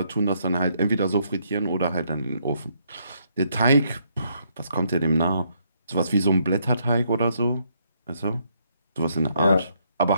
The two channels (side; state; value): both; inverted; correlation -0.73